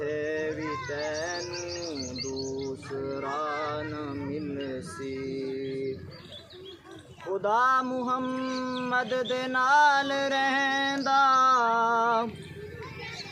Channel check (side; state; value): both; identical; correlation 1.00